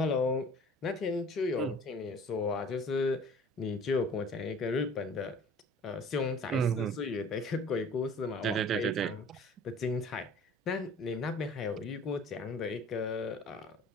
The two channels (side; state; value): both; normal; correlation 0.48